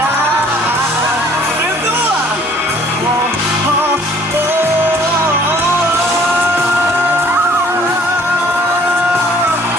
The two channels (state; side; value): normal; both; correlation 0.56